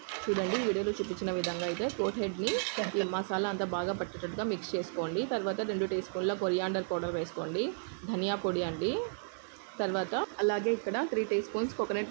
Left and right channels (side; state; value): left; silent; digital silence